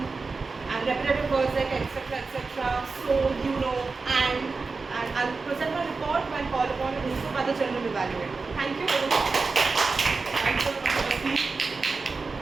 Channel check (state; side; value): quieter; left; 4.2 dB